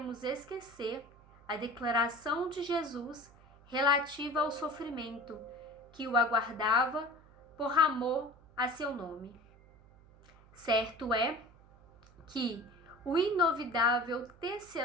esquecer a declaração de Jesus relativa ao sofrimento que o aguardava por amor a seu nome. Certo é que o inovidável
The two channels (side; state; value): right; noise; hum, 25 dB below the sound